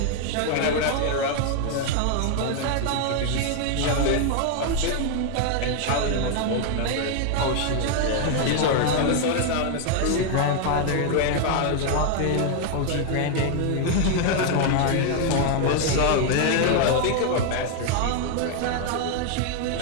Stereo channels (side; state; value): both; different; correlation 0.00